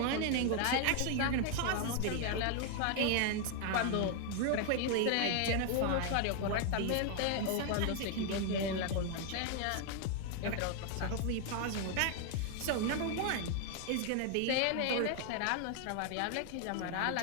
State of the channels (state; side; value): different; both; correlation 0.00